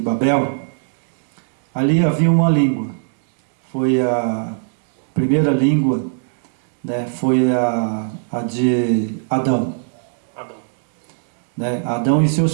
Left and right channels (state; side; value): silent; left; digital silence